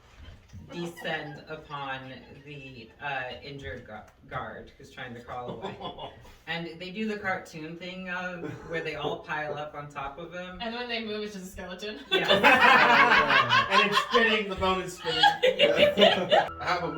descend upon the injured guard who's trying to crawl away. And they do the cartoon thing of where they all pile up on top of him. And when they move, it's just a skeleton. Yeah. And it's spinning, the bone is spinning. I have a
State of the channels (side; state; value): both; identical; correlation 1.00